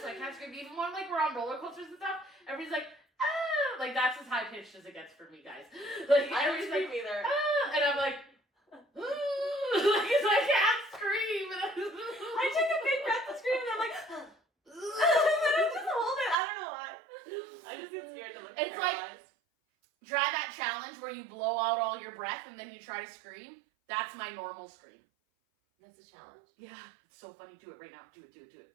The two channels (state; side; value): drops out; left; at 16.4 s